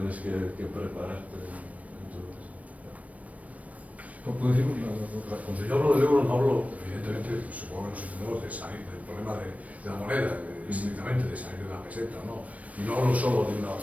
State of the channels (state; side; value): late; left; 0.068 ms